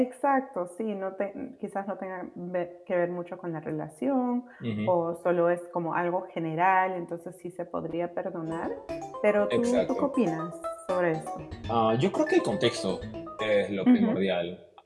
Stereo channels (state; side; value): identical; both; correlation 1.00